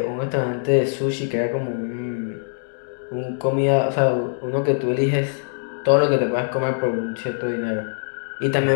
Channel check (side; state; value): right; silent; digital silence